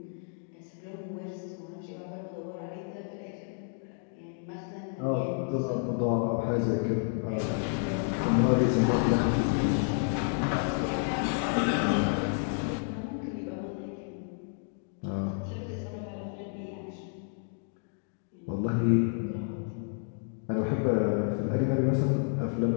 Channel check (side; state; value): right; silent; 57 dB below the other